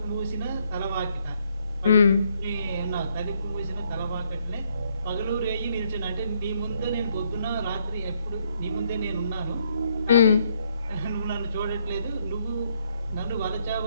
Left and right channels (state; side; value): inverted; both; correlation -0.72